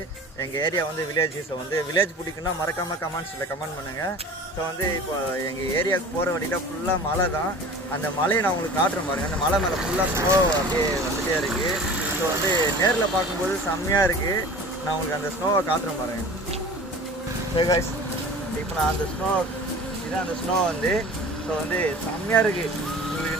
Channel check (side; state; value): both; normal; correlation 0.40